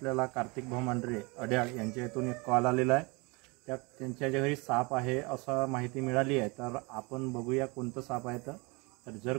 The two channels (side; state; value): left; quieter; 27.6 dB